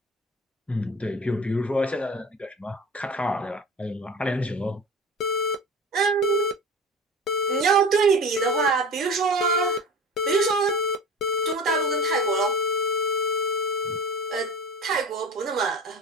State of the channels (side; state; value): both; normal; correlation 0.35